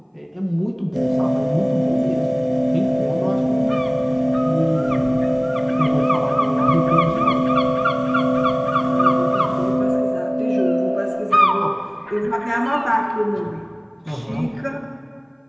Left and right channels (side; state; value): both; identical; correlation 1.00